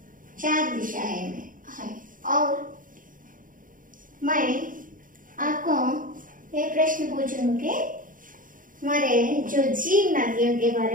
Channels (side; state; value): left; late; 0.39 ms